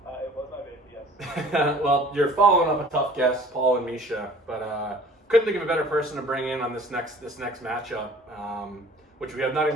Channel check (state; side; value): normal; both; correlation 0.49